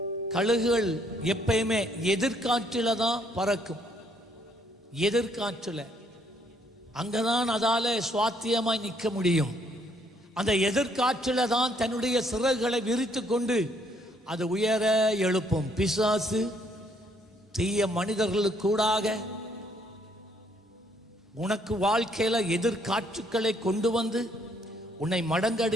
கழுகுகள் எப்பயுமே எதிர்காற்றில தான் பறக்கும். எதிர்காற்றில் அங்கதான் அதால சுவாத்தியமாய் நிற்க முடியும். அந்த எதிர்காற்றில தான் தன்னுடைய சிறகுகளை விரித்து கொண்டு அது உயர எழுப்பும். பிசாசு தீய மனிதர்களுக்கூடாக உனக்கு வாழ்க்கையில எதிர்காற்றுக்களை கொண்டு வந்து உன்னை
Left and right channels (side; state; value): both; normal; correlation 0.68